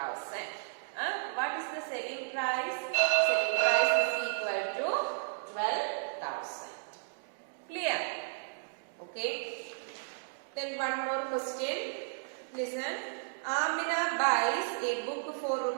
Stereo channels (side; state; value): left; silent; digital silence